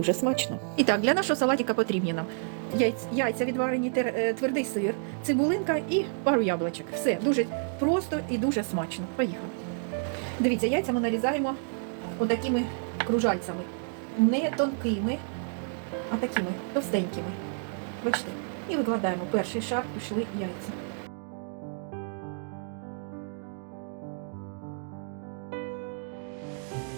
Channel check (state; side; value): silent; left; 58 dB below the other